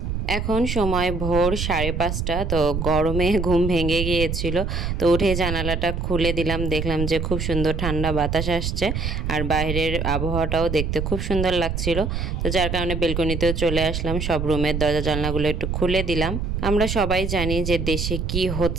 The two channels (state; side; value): noise; right; rumble, 2 dB below the sound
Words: এখন সময় ভোর 5:30, তো গরমে ঘুম ভেঙে গিয়েছিল, তো উঠে জানালাটা খুলে দিলাম, দেখলাম যে খুব সুন্দর ঠান্ডা বাতাস আসছে আর বাইরের আবহাওয়াটাও দেখতে খুব সুন্দর লাগছিল। তো যার কারণে বেলকনিতেও চলে আসলাম, সব রুমের দরজা জানলাগুলো একটু খুলে দিলাম। আমরা সবাই জানি যে দেশে কি